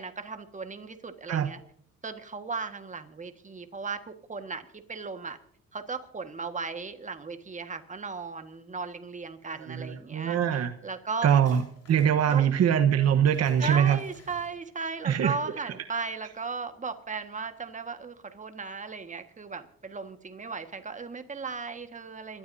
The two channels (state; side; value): quieter; left; 7.5 dB